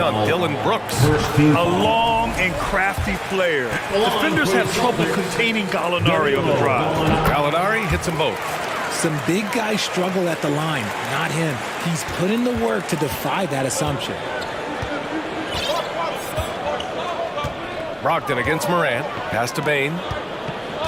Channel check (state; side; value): identical; both; correlation 1.00